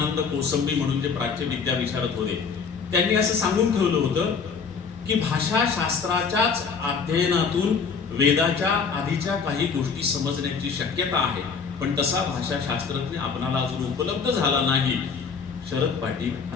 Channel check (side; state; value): right; quieter; 5.6 dB